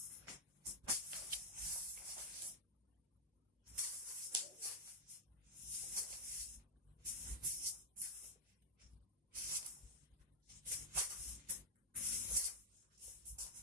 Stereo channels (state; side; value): normal; both; correlation -0.01